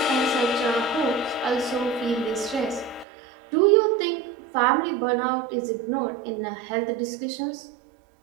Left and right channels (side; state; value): left; drops out; at 3.1 s